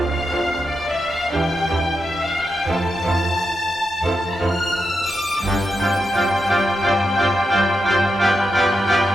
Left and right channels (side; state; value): both; normal; correlation 0.86